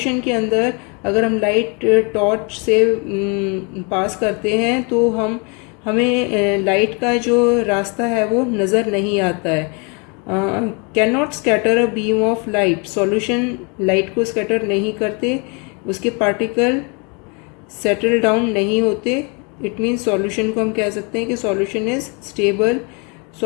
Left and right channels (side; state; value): right; quieter; 33.0 dB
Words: के अंदर अगर हम लाइट टॉर्च से पास करते हैं तो हमें लाइट का जो रास्ता है वो नज़र नहीं आता है। Can not scatter a beam of light, solution light को स्कैटर नहीं करते, उसके पार्टिकल सेटल डाउन नहीं होते। इट मीन्स सॉल्यूशन को हम कह सकते हैं कि solution is stable.